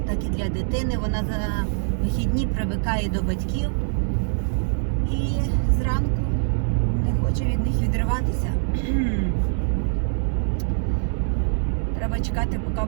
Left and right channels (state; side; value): silent; left; digital silence